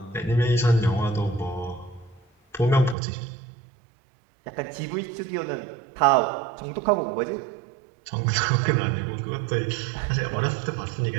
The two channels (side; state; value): left; drops out; at 3.0 s